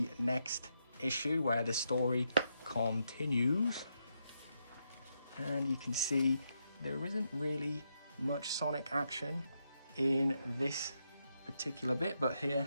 next issue where the story continues, and you can see there isn't really much sonic action in this particular bit, but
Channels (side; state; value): both; inverted; correlation -0.82